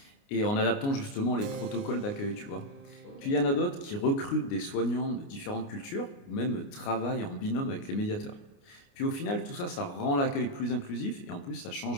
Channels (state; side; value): late; right; 29 ms